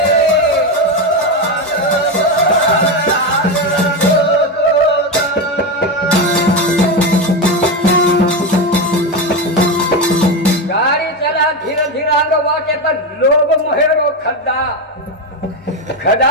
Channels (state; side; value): normal; both; correlation 0.13